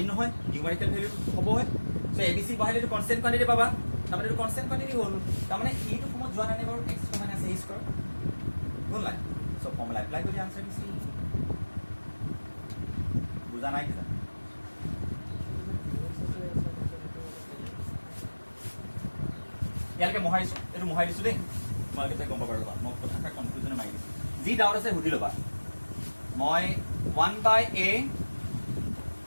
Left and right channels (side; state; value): both; inverted; correlation -1.00